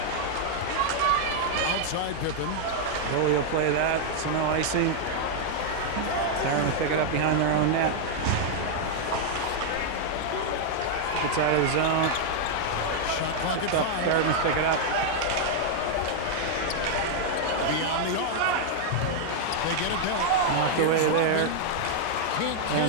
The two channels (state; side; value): different; both; correlation 0.00